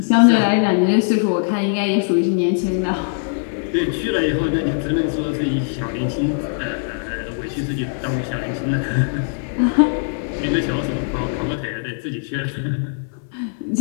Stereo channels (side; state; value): right; silent; 59 dB below the other